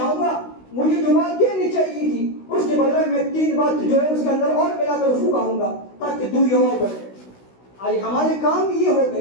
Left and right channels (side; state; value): right; late; 16 ms